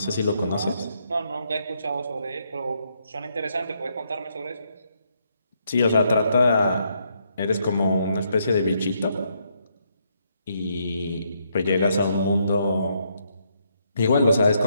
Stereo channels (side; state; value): both; inverted; correlation -0.75